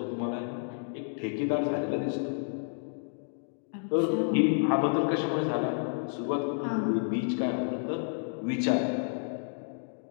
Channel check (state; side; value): silent; right; digital silence